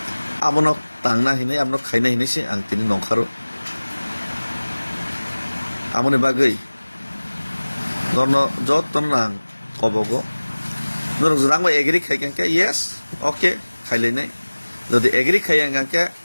आबनो तांना हिनाय आबनो खाइना हिनायसे आं तिनि नंखारो आमनि बागै नरनो जतन आं कबगो नर जरांबा एग्री खाइकांके यस ओके खाइलायनाय जदि एग्री खाइयांगांके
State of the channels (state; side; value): inverted; both; correlation -1.00